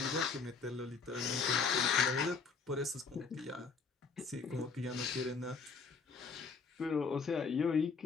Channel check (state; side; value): quieter; right; 5.0 dB